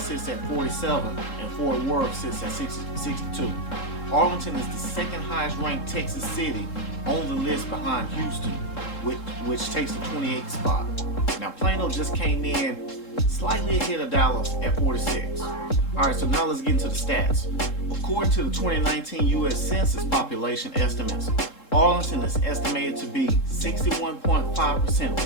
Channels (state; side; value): late; right; 3.7 ms